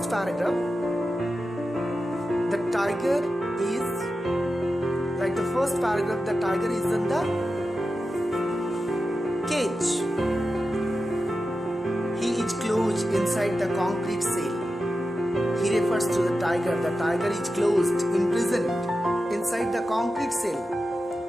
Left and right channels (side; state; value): both; normal; correlation 0.91